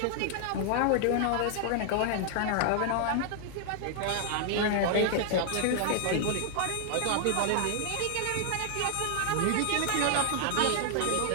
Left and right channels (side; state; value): both; different; correlation 0.00